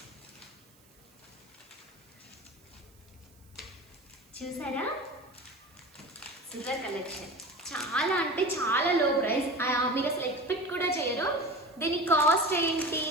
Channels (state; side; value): noise; right; hiss, 29 dB below the sound